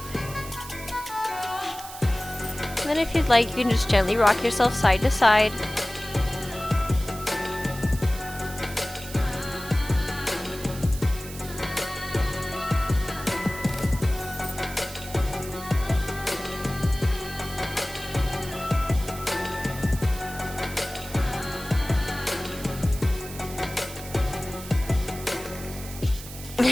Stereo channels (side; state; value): right; noise; hiss, 13 dB below the sound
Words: And then if you'd like, you can just gently rock yourself side to side.